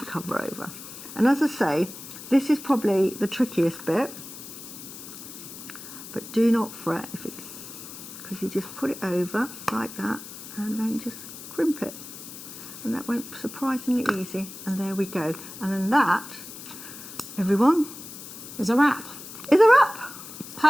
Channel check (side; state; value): left; noise; hiss, 13 dB below the sound